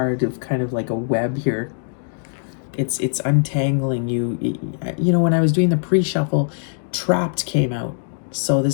of kind of like a web here. It's untangling you. You know, when I was doing the pre-shuffle, trapped came out. So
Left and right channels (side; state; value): right; silent; digital silence